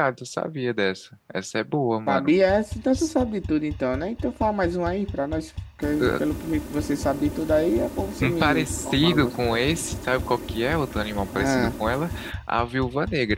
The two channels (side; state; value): both; identical; correlation 1.00